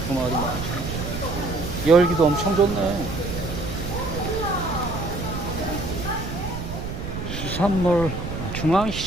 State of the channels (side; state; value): right; noise; rumble, 6 dB below the sound